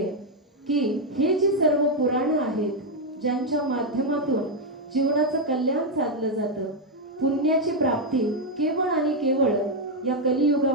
की हे जी सर्व पुराणं आहेत ज्यांच्या माध्यमातून जीवनाचं कल्याण साधलं जातं, पुण्याची प्राप्ती केवळ आणि केवळ या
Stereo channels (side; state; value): both; normal; correlation 0.01